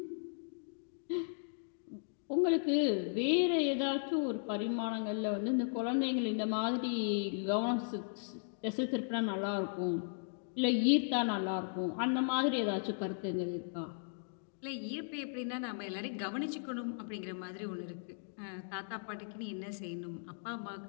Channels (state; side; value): silent; right; digital silence